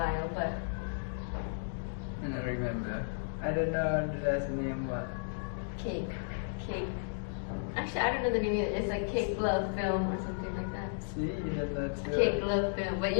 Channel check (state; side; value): silent; right; digital silence